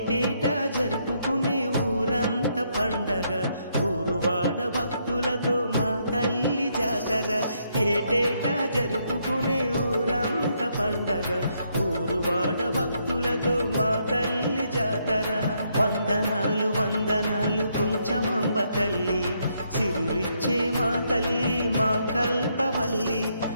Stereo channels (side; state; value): both; inverted; correlation -0.75